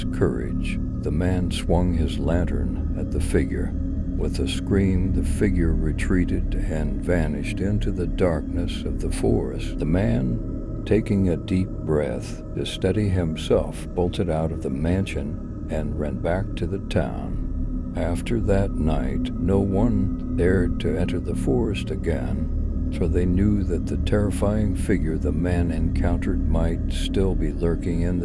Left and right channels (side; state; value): both; identical; correlation 1.00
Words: courage, the man swung his lantern at the figure. With a scream, the figure retreated and vanished into the darkness of the forest. The man, taking a deep breath to steady himself, bolted out of the mansion and ran back to the town. After that night, no one dared to enter the forest again, for they knew that the terrifying figure the man encountered might still be lurking in